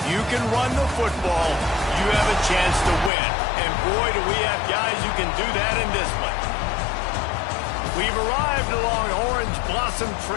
you can run the football, you have a chance to win. And boy, do we have guys who can do that in this one. We've arrived along Orange Blossom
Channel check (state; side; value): drops out; right; at 3.1 s